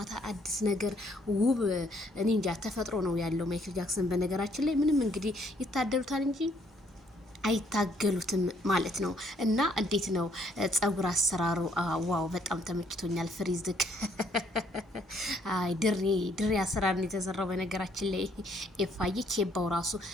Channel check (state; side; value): normal; both; correlation 0.67